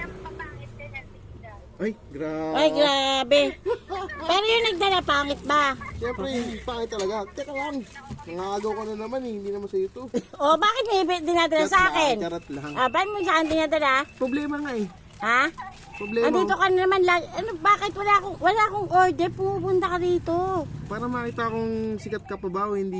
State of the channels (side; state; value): both; identical; correlation 1.00